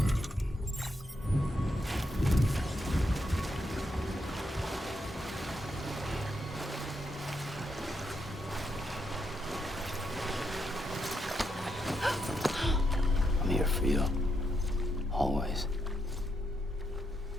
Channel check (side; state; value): both; normal; correlation 0.80